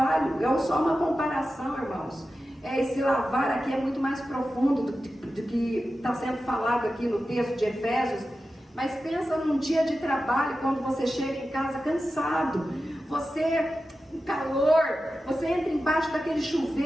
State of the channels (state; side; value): normal; both; correlation 0.93